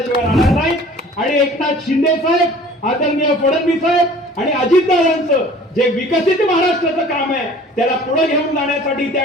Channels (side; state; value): both; normal; correlation 0.48